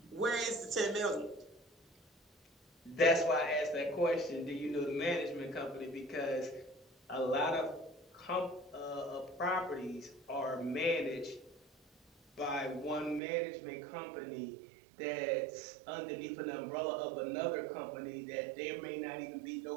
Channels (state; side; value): drops out; left; at 13.2 s